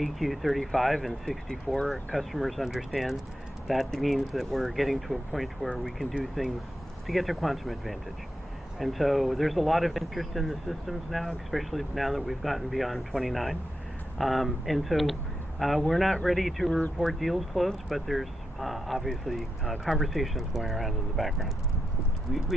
35 and 64, customers understand that means that we're getting to a point where we can do things to get to quantum advantage. And so there's a lot of interest in the systems now, especially now that we've gotten beyond 29. And so we're not ready to report deals closed, but there's obviously conversations going around in the background.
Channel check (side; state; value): both; normal; correlation 0.86